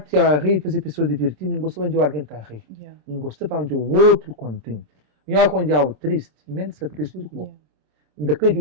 a rir, fazer pessoas divertir, não gosto de alguém está a rir. Não gosto para onde o outro contente. Melhor quando é algo triste, menos se triste do que bom. Daquele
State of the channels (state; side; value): late; left; 27 ms